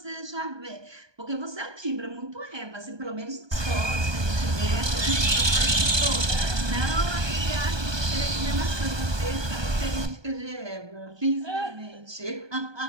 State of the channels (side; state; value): left; late; 1.2 ms